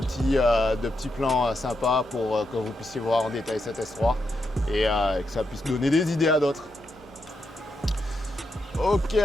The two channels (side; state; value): both; normal; correlation 0.83